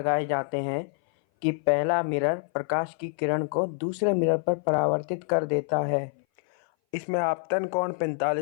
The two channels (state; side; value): silent; right; 58 dB below the other